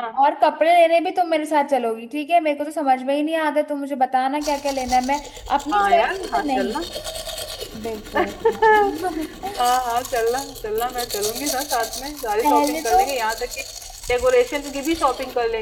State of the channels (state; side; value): identical; both; correlation 1.00